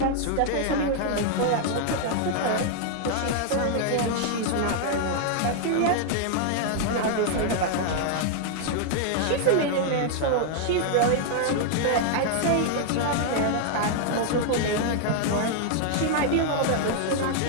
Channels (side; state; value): both; different; correlation 0.00